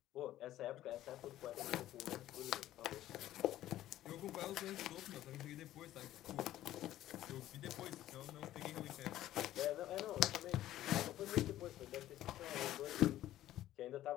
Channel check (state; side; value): quieter; right; 13.7 dB